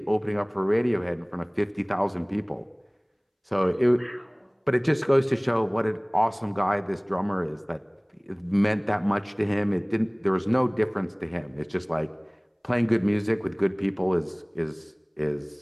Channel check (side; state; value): both; identical; correlation 1.00